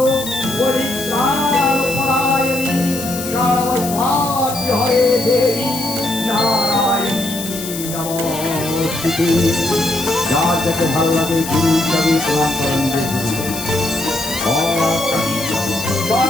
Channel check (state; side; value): noise; left; hiss, 8 dB below the sound